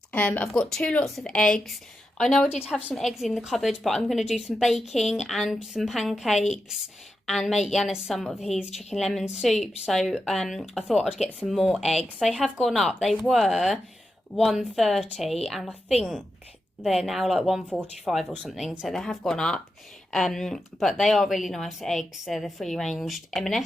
I've got 2 lots of eggs. I know I did have some eggs in the cupboard, but I'm going to do some baking and some pancakes and make Yanis some of his chicken lemon soup. So I thought I'd get some more eggs. They have gone up. They were £1.30 and I think they're now like £1.45 or something. So they have gone up. But they are really nice eggs. They're the free-ranged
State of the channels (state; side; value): normal; both; correlation 0.88